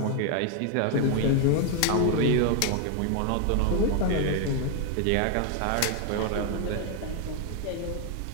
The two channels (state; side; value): different; both; correlation 0.00